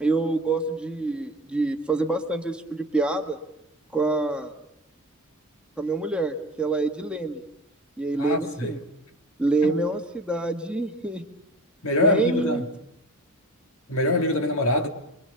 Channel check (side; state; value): both; normal; correlation 0.35